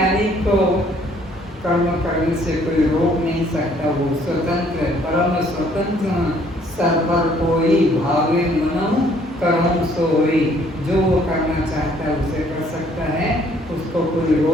को कर्म करने से कोई रोक नहीं सकता, वो स्वतंत्र, परम स्वतंत्र, सर्वर कोई भावे मनम कर्म सोई, जो वो करना चाहता है उसे कर सकता है, उसको कोई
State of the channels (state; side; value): normal; both; correlation 0.62